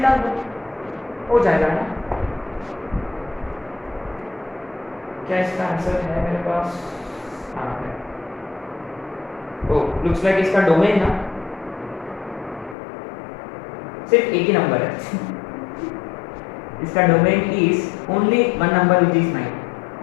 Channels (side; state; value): right; drops out; at 12.8 s